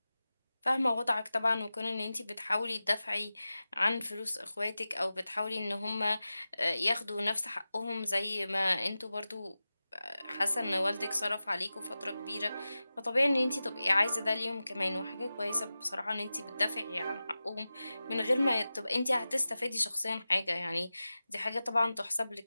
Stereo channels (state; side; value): inverted; both; correlation -0.95